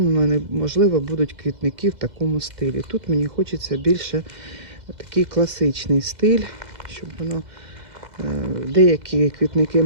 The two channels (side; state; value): left; late; 2.0 ms